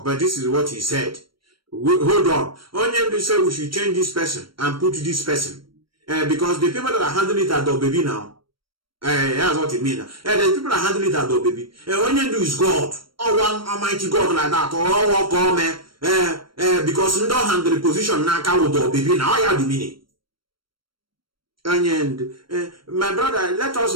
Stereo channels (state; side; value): late; left; 0.73 ms